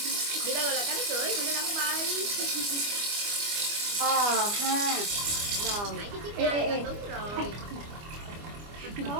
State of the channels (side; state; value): left; late; 25 ms